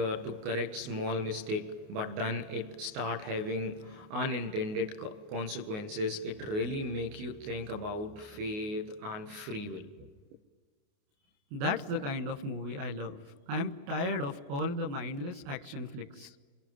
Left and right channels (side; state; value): left; late; 29 ms